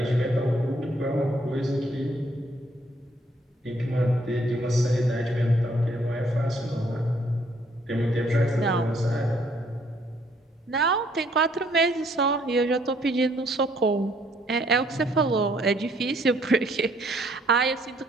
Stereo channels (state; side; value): normal; both; correlation 0.66